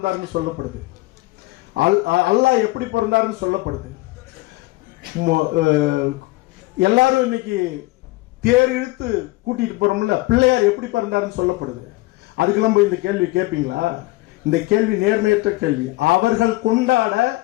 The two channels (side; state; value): right; quieter; 20.6 dB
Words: சொல்லப்படுது, அல்லாஹ் எப்படி பிறந்தாருன்னு சொல்லப்படுது. எல்லாரும் இன்னைக்கு தேர் இழுத்து கூட்டிட்டு போறோம்ல, பிள்ளையார் எப்படி பிறந்தாருன்னு சொல்லப்படுது. அதுக்கெல்லாம் போய் இந்த கேள்வி கேட்பீங்களா? இந்த கேள்வி நேர்மையற்ற கேள்வி. அவர்கள் கொண்டாட